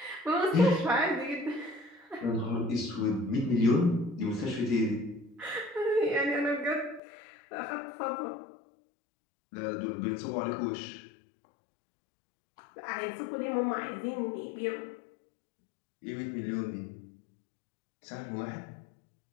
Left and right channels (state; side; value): drops out; right; at 7.0 s